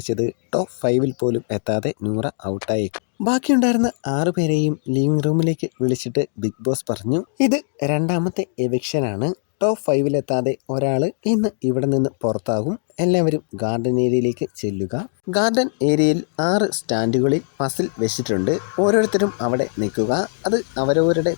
ടോപ്പ് 5-ൽ പോലും എത്താതെ നൂറ ഔട്ടായേക്കും. ബാക്കിയുണ്ടായിരുന്ന 6 പേരെയും ലിവിംഗ് റൂമിലേക്ക് വിളിച്ചിട്ട് ബിഗ് ബോസ് പറഞ്ഞു, ഇത് രണ്ടാമത്തെ എവിക്ഷനാണ്. ടോപ്പ് 5-ലെത്താതെ ഒരാൾ ഇന്ന് ഇവിടെ നിന്ന് പുറത്താകും. എല്ലാവരും ഗാർഡൻ ഏരിയയിലേക്ക് ചെല്ലുക. ഗാർഡൻ ഏരിയയിൽ 6 സ്റ്റാൻഡുകളിൽ പസിൽ വെച്ചിട്ടുണ്ട്. ഓരോരുത്തരും അവിടെ നിൽക്കുക. അത് അവരവരുടെ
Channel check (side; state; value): right; silent; 65 dB below the other